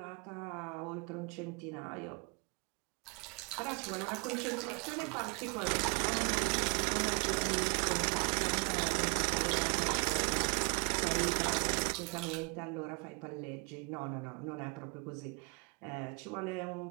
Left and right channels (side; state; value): left; quieter; 32.4 dB